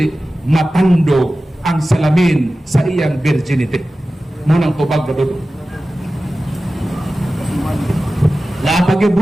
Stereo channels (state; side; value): normal; both; correlation 0.95